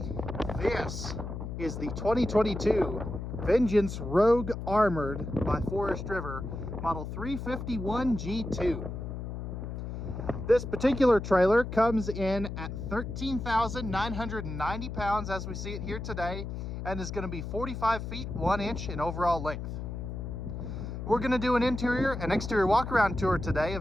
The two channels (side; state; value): left; noise; hum, 6 dB below the sound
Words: This is the 2022 Vengeance Rogue Armored by Forest River Model 351 G2. This particular trailer comes in at 13,990 pounds as we see it here today, and is going to be 45 feet 1 inch in overall length. We're going to do an interior and exterior walk-around tour today